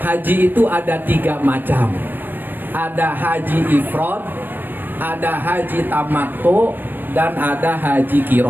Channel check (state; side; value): late; left; 0.091 ms